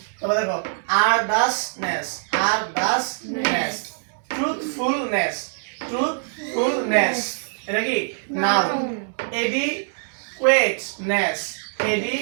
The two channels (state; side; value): silent; left; digital silence